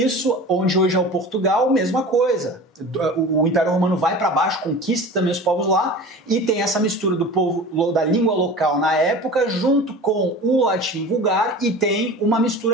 onde hoje é o Portugal, mesma coisa. O Império Romano vai para baixo, conquista também os povos lá e tem essa mistura do povo da língua local na época junto com o latim vulgar e tem uma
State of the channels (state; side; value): normal; both; correlation 0.36